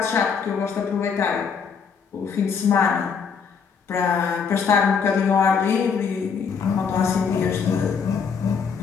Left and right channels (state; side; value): quieter; right; 6.2 dB